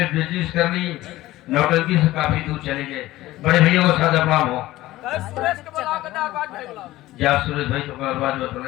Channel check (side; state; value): right; quieter; 16.7 dB